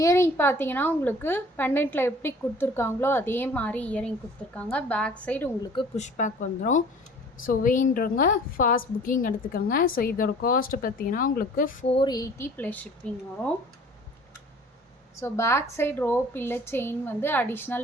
பார்த்தீங்கன்னா உங்களுக்கு பெண்டன்ட்டில் எப்படி கொடுத்துருக்காங்களோ அதே மாதிரி இயரிங் கொடுத்துருக்காங்க. பேக் சைடு உங்களுக்கு புஷ் பேக் வந்துடும். ஸோ வேணுன்றவங்க ஃபாஸ்ட் புக்கிங் எடுத்துக்கோங்க. ஸோ இதோட காஸ்ட்டு பார்த்தீங்கன்னா உங்களுக்கு 480 ப்ளஸ் ஷிப்பிங் வரும். ஸோ பேக் சைடு ரோப் இல்லை செயின் வந்து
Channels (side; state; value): both; normal; correlation 0.49